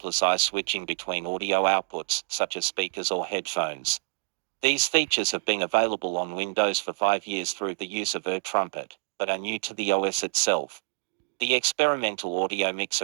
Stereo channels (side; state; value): left; silent; digital silence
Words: switching between audio outputs, such as speakers or headphones. These features have been available on Windows for 5 years through the use of AirTrumpet, but are new to the OS itself. The experimental audio